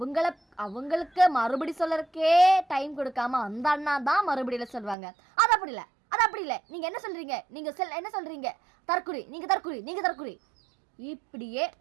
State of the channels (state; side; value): drops out; left; at 5.0 s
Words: அவங்களுக்கு மறுபடி சொல்லறதுக்கே டைம் கொடுக்காம அந்த அண்ணா தான் மறுபடியில் சொல்லுவாங்க. அது அப்படி இல்லை, நீங்கள் என்ன சொல்கிறீங்க, நீங்கள் என்ன சொல்கிறீங்க, தற்குறி இப்படியே